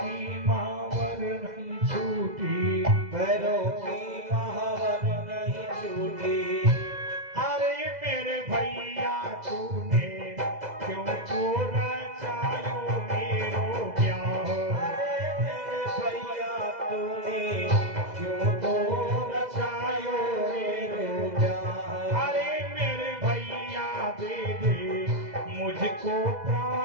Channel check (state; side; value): late; left; 2.0 ms